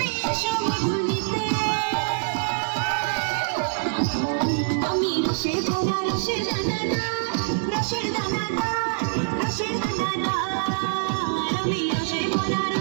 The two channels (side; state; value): left; silent; 62 dB below the other